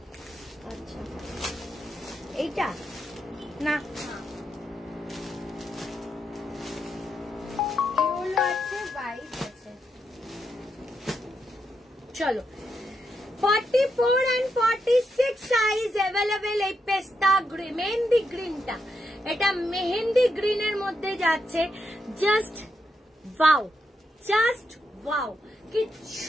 আচ্ছা এইটা না, এগুলো আছে, হোয়াইট আছে। চলো 44 and 46 সাইজ অ্যাভেলেবেল, এই পেস্তা মেহেন্দি গ্রিনটা, এটা মেহেন্দি গ্রিনের মধ্যে যাচ্ছে। জাস্ট ওয়াও, জাস্ট ওয়াও,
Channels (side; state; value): both; normal; correlation 0.82